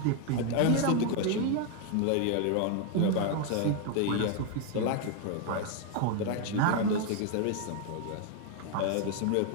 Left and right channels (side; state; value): both; different; correlation 0.01